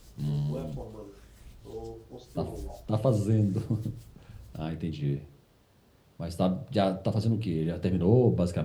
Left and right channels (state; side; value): identical; both; correlation 1.00